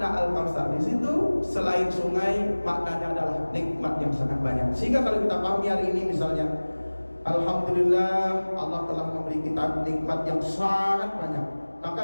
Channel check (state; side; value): inverted; both; correlation -1.00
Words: Al-Kautsar di situ selain sungai, maknanya adalah nikmat yang sangat banyak. Sehingga kalau kita pahami hari ini misalnya, alhamdulillah Allah telah memberi kita nikmat yang sangat banyak.